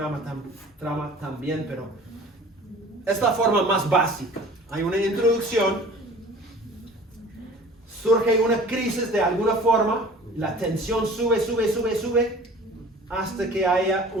también, pero es la forma más básica. Hay una introducción, surge una crisis de alguna forma, la tensión sube hasta que haya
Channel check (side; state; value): both; normal; correlation 0.45